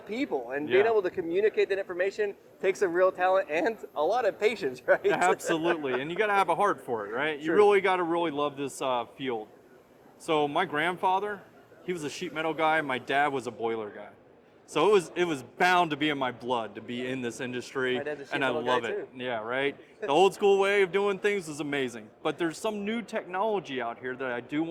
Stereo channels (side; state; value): both; identical; correlation 1.00